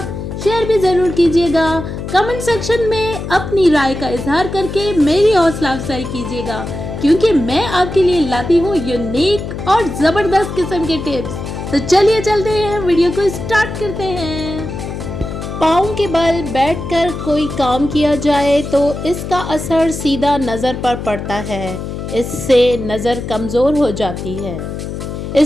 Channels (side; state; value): left; noise; hum, 7 dB below the sound